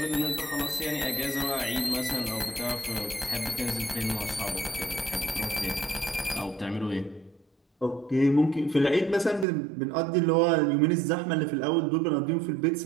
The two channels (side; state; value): left; drops out; at 9.5 s